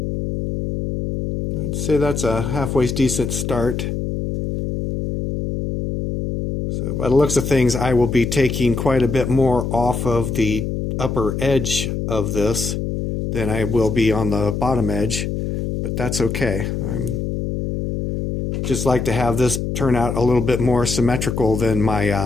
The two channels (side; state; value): left; noise; hum, 3 dB below the sound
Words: I'd say that's a halfway decent start. So by the looks of things, I will be taking quite a bit more off of the upper edge of this than I will be on the bottom edge, but that's okay. I'm just like to have this turn out a little bit more symmetrical than